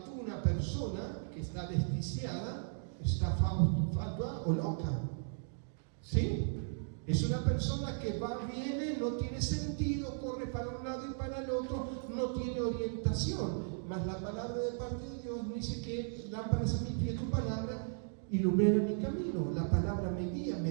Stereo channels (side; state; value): left; silent; digital silence